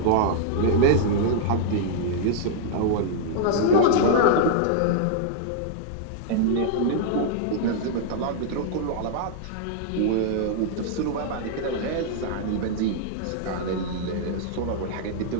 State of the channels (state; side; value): different; both; correlation -0.01